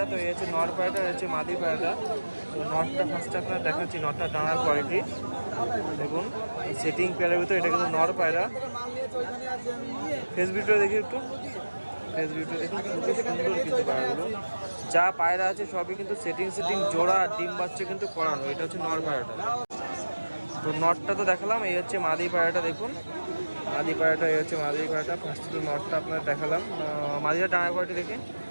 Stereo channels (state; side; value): inverted; both; correlation -1.00